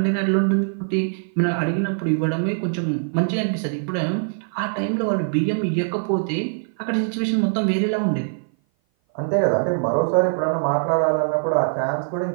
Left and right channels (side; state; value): left; silent; 57 dB below the other